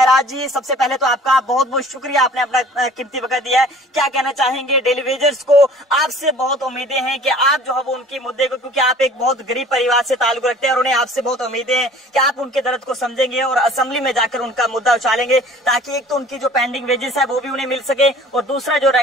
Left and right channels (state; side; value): normal; both; correlation 0.49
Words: जी, सबसे पहले तो आपका बहुत बहुत शुक्रिया, आपने अपना कीमती वक्त दिया है। क्या कहना चाहेंगे डेली वेजर्स को? आपसे बहुत उम्मीदें हैं कि आप जो है वो उनके मुद्दे को, क्योंकि आप एक बहुत गरीब परिवार से ताल्लुक रखते हैं और उन्हें आपसे बहुत उम्मीदें हैं कि आप उनके दर्द को समझेंगे और असेंबली में जाकर उनका मुद्दा उछालेंगे, ताकि एक तो उनकी जो पेंडिंग वेजेस है वो भी उन्हें मिल सके और दूसरा जो